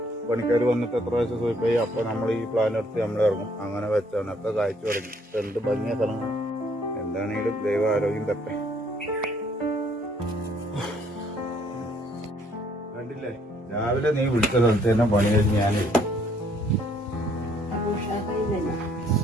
പണിക്കാർ വന്നിട്ട് എത്ര പ്രാവശ്യം സൂയിപ്പായി അപ്പൊ നമ്മൾ ഈ പ്ലാൻ എടുത്ത് നമ്മൾ ഇറങ്ങും. അങ്ങനെ വെച്ചാണ് ഒക്കെ കാഴ്ച തുടങ്ങി. എന്ത് ഭംഗിയ സ്ഥലങ്ങൾ. എന്താണെങ്കിലും ദൈവ ആരോഗ്യം തട്ടെ. കണ്ടില്ലേ, രാവിലെ നീ വിളിച്ച സ്ഥലത്ത് തന്നെ പണി കഴിഞ്ഞ് ഞാൻ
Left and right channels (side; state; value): both; normal; correlation 0.65